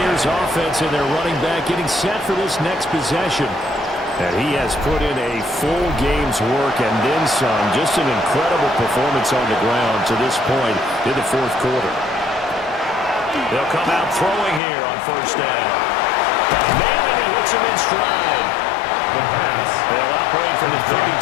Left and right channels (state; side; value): drops out; right; at 14.6 s